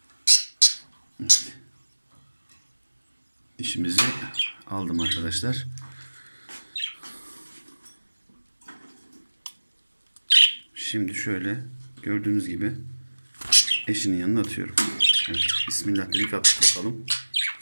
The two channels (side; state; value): both; inverted; correlation -1.00